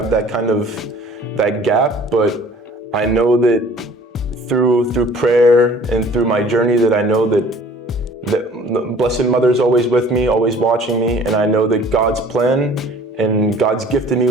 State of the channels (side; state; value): both; normal; correlation 0.51